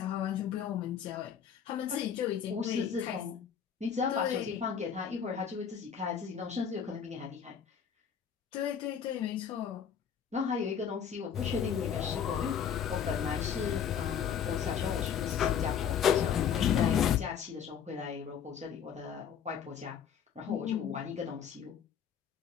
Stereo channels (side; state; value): right; quieter; 7.9 dB